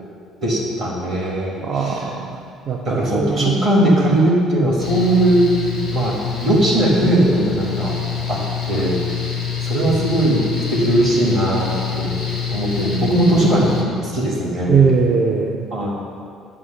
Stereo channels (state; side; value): normal; both; correlation 0.58